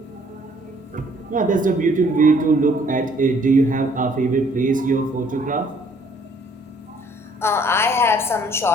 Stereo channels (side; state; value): both; normal; correlation 0.61